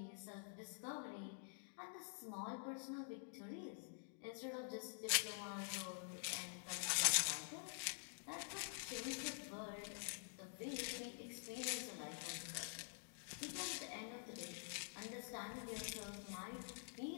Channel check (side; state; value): right; silent; digital silence